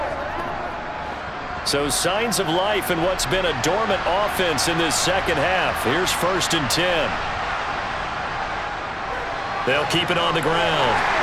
So signs of life in what's been a dormant offense in this 2nd half. Here's 1st and 10. They'll keep it on the ground.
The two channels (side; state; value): both; identical; correlation 1.00